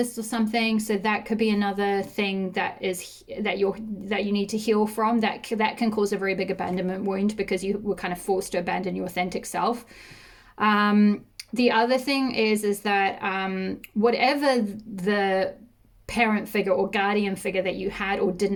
or something. So that could be another thing that you need to heal from. That can cause a very big abandonment wound, because you were kind of forced to abandon your authentic self. The other thing is that whatever the parent figure or guardian figure that you had or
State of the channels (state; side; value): identical; both; correlation 1.00